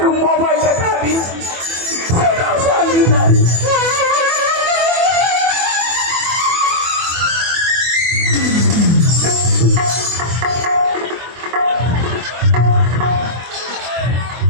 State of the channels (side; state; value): left; late; 24 ms